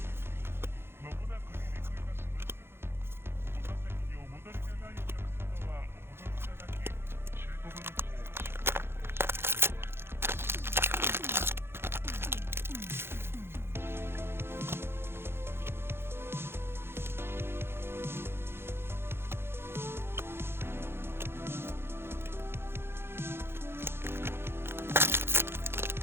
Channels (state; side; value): late; left; 0.11 ms